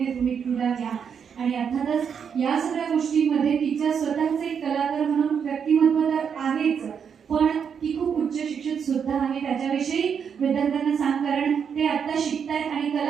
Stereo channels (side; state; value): left; quieter; 7.1 dB